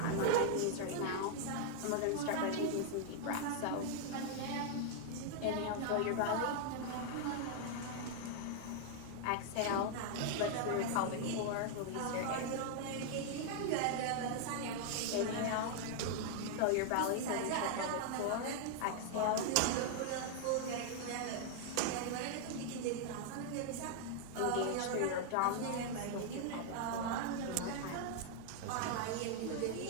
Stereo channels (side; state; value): both; different; correlation 0.00